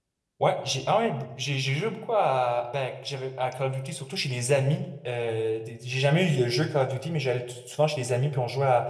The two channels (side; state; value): both; identical; correlation 1.00